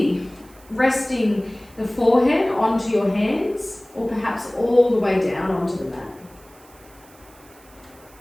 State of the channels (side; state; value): right; noise; hiss, 26 dB below the sound